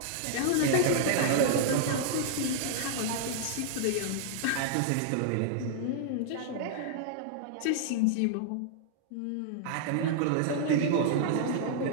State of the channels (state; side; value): different; both; correlation -0.01